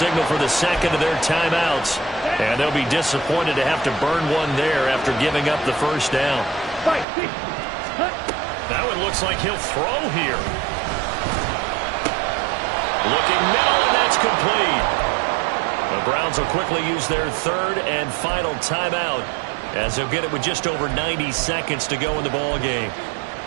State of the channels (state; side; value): drops out; left; at 7.1 s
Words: for the 2nd of their timeouts. And they'll be disappointed to have to burn one there after giving up the 1st down. That one looks like he'll throw here. Looking middle, and that's complete. The Browns will quickly use their 3rd and final timeout as they'll get it with just over 90 seconds to go in the ball game.